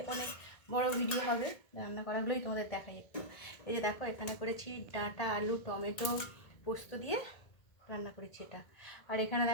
অনেক বড় ভিডিও হবে, রান্না করাগুলোই তোমাদের দেখাই একটু। এই যে দেখো, এখানে করেছি ডাঁটা, আলু, টমেটো, পোস্ত দিয়ে রান্না করেছি এটা। আর এখানে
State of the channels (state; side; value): late; right; 1.8 ms